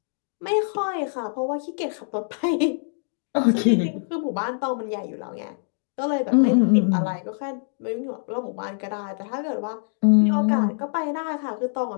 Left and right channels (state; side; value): silent; right; digital silence